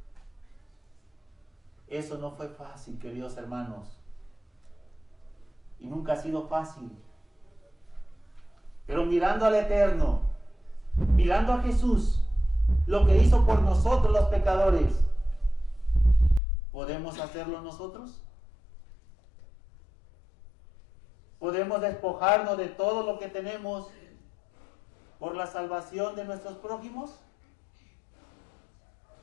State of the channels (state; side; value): drops out; right; at 16.4 s